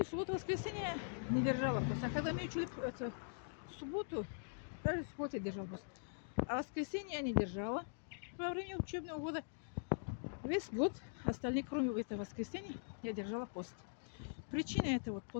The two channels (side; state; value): right; silent; digital silence